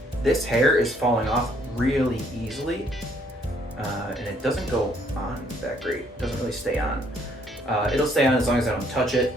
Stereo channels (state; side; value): normal; both; correlation 0.66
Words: This hair is falling off really easily, and it doesn't go on that great. It doesn't really stay on. It'll stay on as long as I don't touch it.